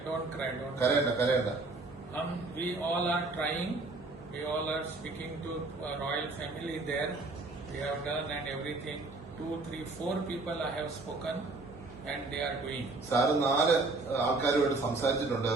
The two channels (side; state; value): left; quieter; 3.4 dB